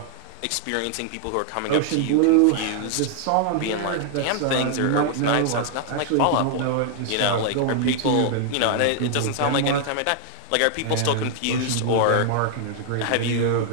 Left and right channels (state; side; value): different; both; correlation -0.01